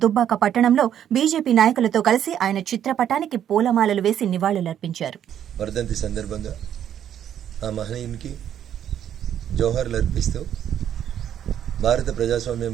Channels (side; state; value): left; quieter; 10.0 dB